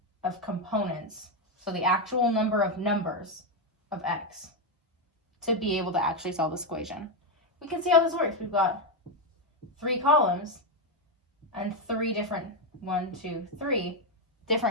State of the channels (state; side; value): normal; both; correlation 0.06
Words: of components, so the actual number of numbers of x, to be able to actually solve this equation. We can see how this works. We've got 3 columns and 3 different, 1, 2, 3